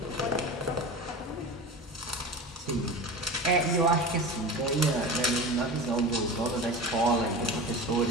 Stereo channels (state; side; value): normal; both; correlation 0.31